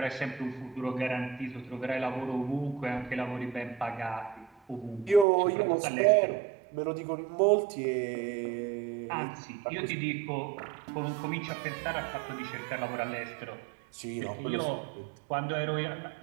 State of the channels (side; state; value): left; drops out; at 5.2 s